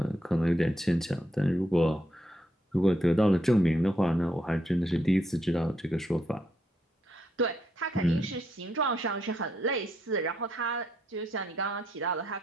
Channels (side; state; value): both; normal; correlation 0.77